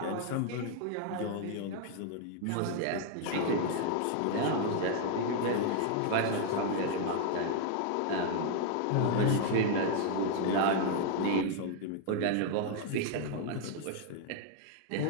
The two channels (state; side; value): different; both; correlation 0.00